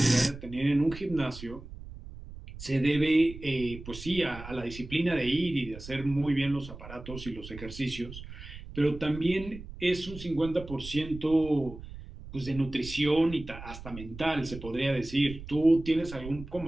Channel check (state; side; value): noise; right; rumble, 13 dB below the sound